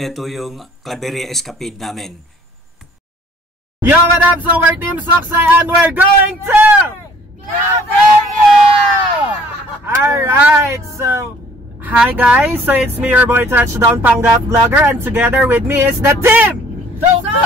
yung Claveria Escapade namin. Yo, what up? So we're Team Soksay and we're going to Claveria! Alright, so hi guys, so it's me, your boy Touchdown Panggap Vlogger, and together with me is the team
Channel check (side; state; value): both; normal; correlation 0.57